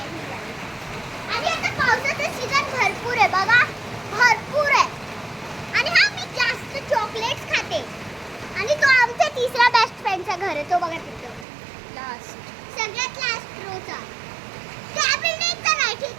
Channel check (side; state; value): left; drops out; at 11.5 s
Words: आणि आता पावसाचं सीझन भरपूर आहे बघा. भरपूर आहे. आणि हा मी जास्त चॉकलेट्स खाते. आणि तो आमचा तिसरा बेस्ट फ्रेंडचा घर आहे. तो बघा तिथं लास्ट. सगळ्यात लास्ट रोचा. त्या बिल्डिंगचा नाही,